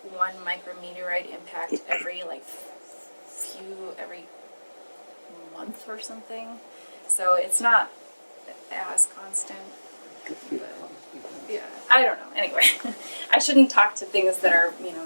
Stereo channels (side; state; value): both; inverted; correlation -1.00